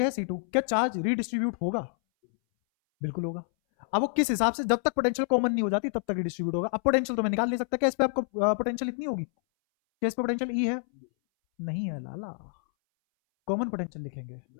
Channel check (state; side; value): silent; right; 59 dB below the other